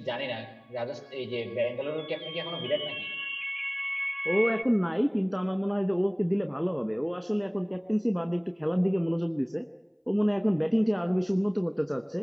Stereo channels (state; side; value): identical; both; correlation 1.00